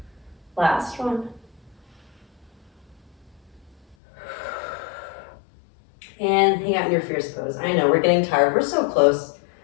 Last one. And hang out in your fierce pose. I know, we're getting tired. We're so close.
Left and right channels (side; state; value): right; drops out; at 4.0 s